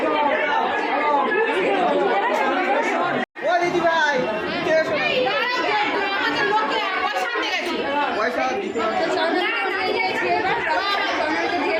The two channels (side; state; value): both; identical; correlation 1.00